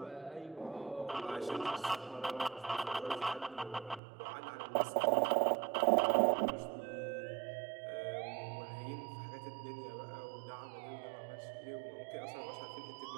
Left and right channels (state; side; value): drops out; left; at 4.0 s